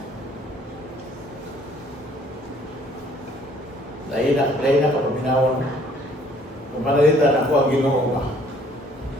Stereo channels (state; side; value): normal; both; correlation 0.59